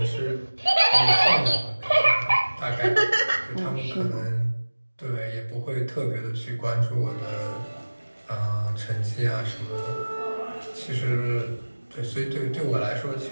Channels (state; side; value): inverted; both; correlation -1.00